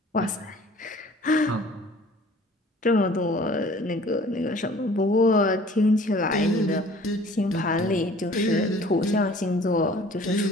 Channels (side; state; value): both; normal; correlation 0.50